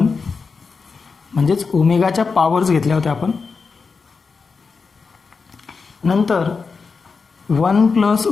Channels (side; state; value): right; quieter; 4.9 dB